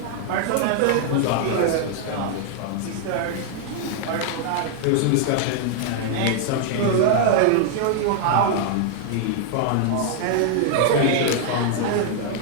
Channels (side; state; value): both; different; correlation 0.00